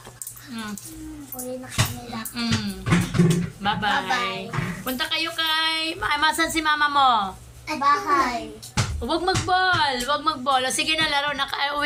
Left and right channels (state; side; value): identical; both; correlation 1.00